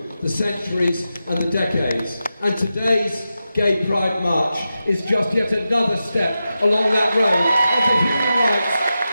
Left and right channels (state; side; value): inverted; both; correlation -0.91